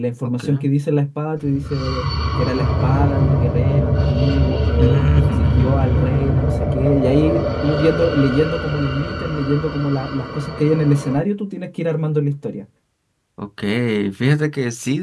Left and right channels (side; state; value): both; identical; correlation 1.00